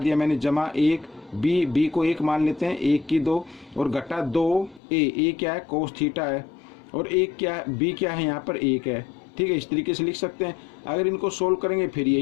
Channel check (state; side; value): drops out; right; at 4.8 s